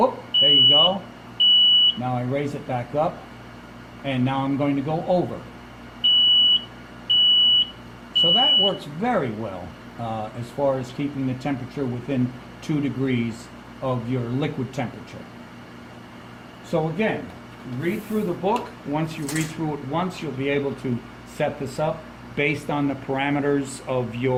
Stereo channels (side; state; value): both; identical; correlation 1.00